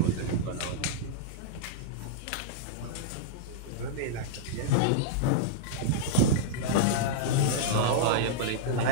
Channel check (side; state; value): both; different; correlation -0.02